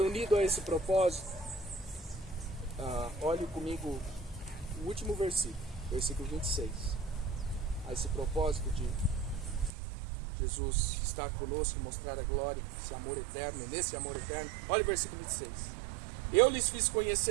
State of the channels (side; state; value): left; drops out; at 9.7 s